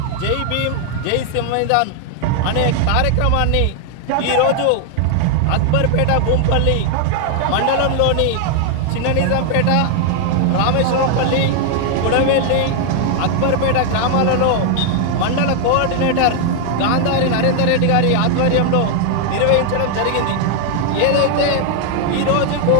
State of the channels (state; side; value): different; both; correlation 0.00